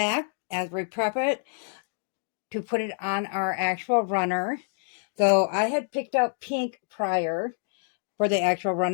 as we prep it to put it on our actual runner. So I had picked out pink prior for the actual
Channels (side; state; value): right; silent; digital silence